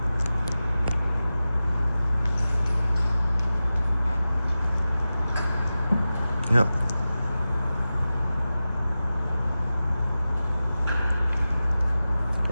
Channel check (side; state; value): both; inverted; correlation -0.95